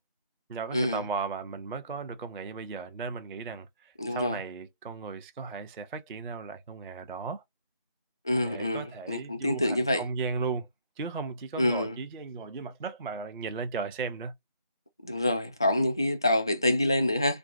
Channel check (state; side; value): inverted; both; correlation -0.68